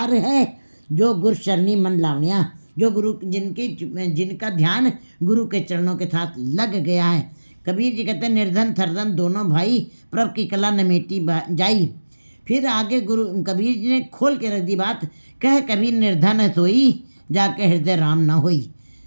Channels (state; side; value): inverted; both; correlation -1.00